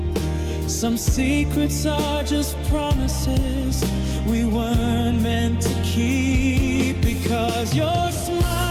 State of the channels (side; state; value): both; identical; correlation 1.00